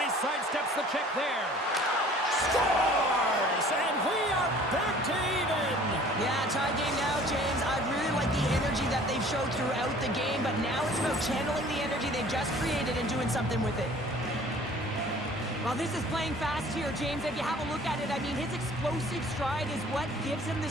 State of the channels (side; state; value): both; normal; correlation 0.51